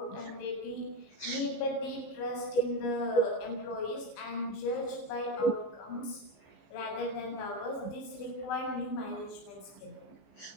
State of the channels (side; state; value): right; late; 15 ms